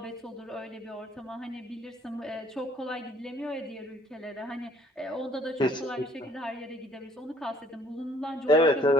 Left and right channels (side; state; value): both; normal; correlation 0.60